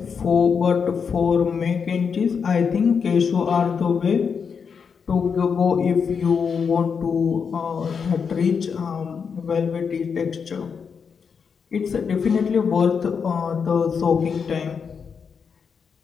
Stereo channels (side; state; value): right; quieter; 6.2 dB